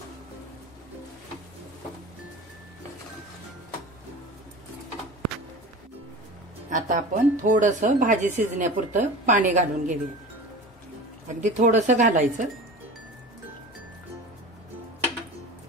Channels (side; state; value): both; normal; correlation 0.35